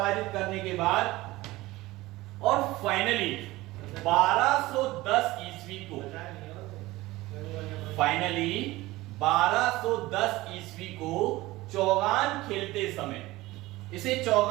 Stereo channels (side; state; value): left; quieter; 18.9 dB